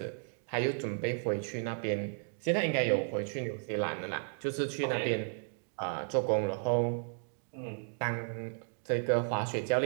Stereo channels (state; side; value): silent; left; 55 dB below the other